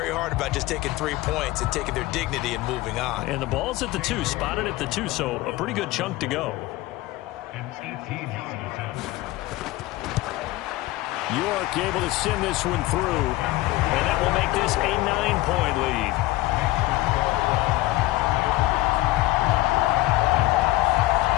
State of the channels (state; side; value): quieter; right; 18.3 dB